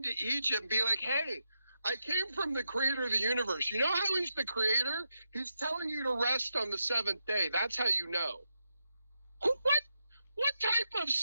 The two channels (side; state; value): both; inverted; correlation -0.84